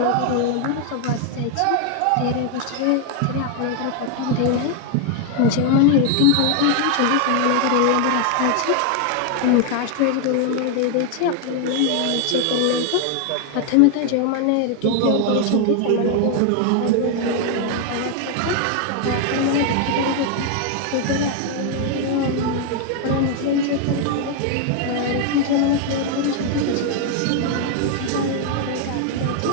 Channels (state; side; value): different; both; correlation 0.01